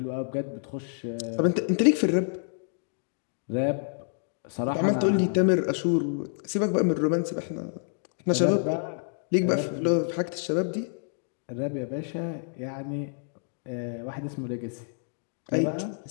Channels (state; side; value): silent; right; digital silence